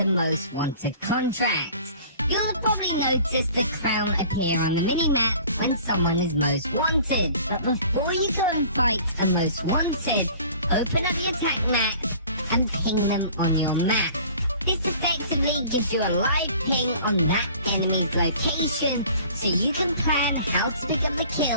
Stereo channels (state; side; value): inverted; both; correlation -0.48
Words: most wanted contracts. You'll have probably noticed the crown appear on the minimap when someone is most wanted. But before you go and fight a most wanted, open up your attack map and ping them on your map. This effectively gives you a live ping on that enemy's location, so you can plan how to pick up the